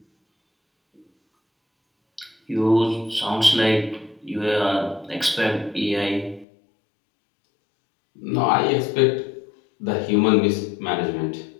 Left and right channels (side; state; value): right; drops out; at 6.5 s